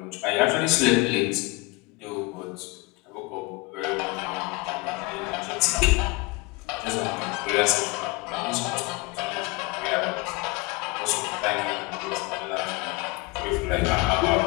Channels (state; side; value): quieter; right; 24.1 dB